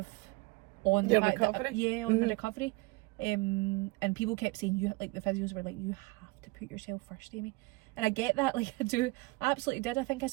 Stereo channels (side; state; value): left; quieter; 24.1 dB